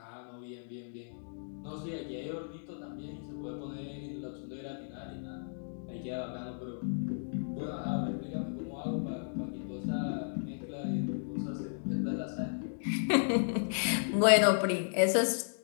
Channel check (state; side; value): silent; right; digital silence